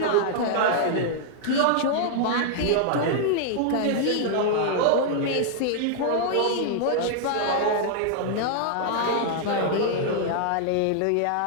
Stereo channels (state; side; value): different; both; correlation -0.01